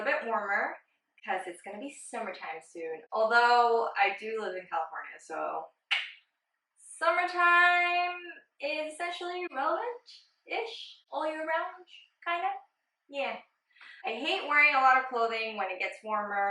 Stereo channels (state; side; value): identical; both; correlation 1.00